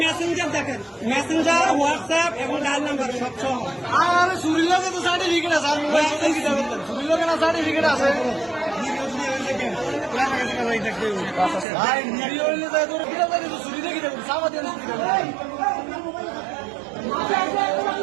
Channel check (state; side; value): drops out; left; at 11.7 s